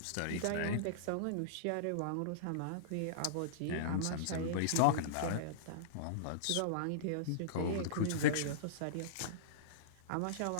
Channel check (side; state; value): both; different; correlation -0.03